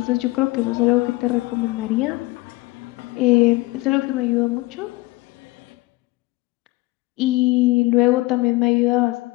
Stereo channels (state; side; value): quieter; right; 21.7 dB